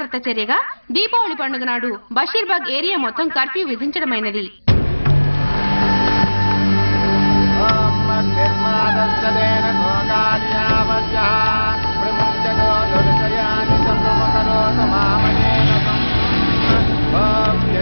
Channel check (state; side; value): inverted; both; correlation -1.00